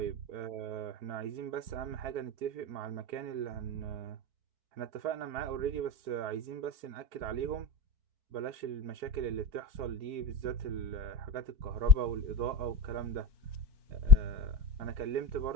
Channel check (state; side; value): late; left; 4.5 ms